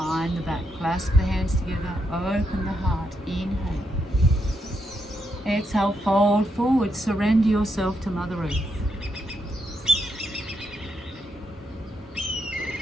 the back. Clasp the hands together. Open the heart. Inhale. Exhale, fold forward. Surrender yourself to Mother Earth.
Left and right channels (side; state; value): both; normal; correlation 0.80